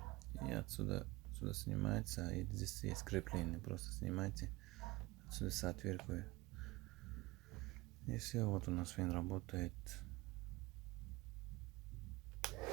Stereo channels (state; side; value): quieter; left; 21.5 dB